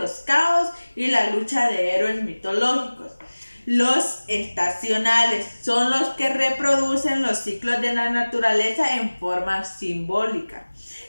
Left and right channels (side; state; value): both; inverted; correlation -1.00